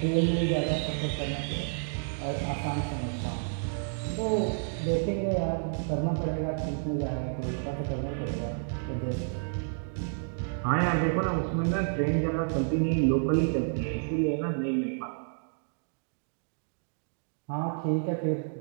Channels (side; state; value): left; silent; digital silence